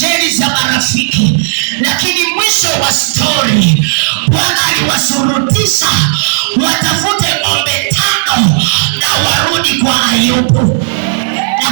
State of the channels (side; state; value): left; silent; digital silence